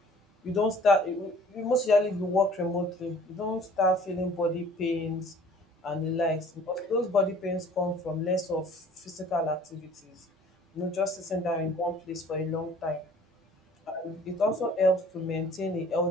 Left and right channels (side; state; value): both; normal; correlation 0.51